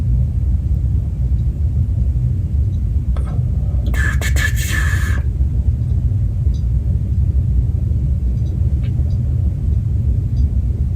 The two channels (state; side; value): identical; both; correlation 1.00